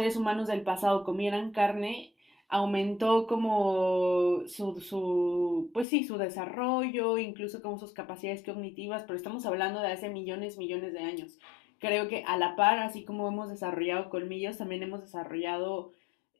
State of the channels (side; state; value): right; drops out; at 5.9 s